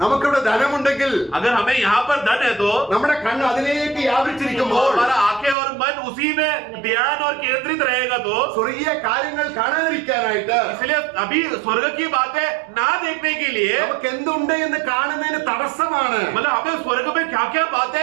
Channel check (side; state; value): left; drops out; at 5.6 s